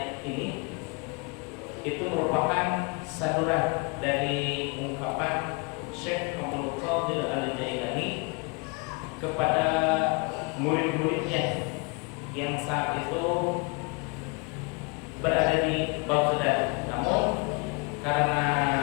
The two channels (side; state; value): right; quieter; 30.0 dB